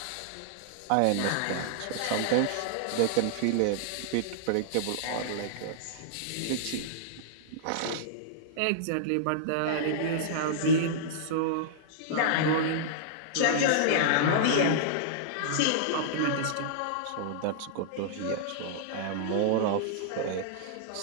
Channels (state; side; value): different; both; correlation -0.02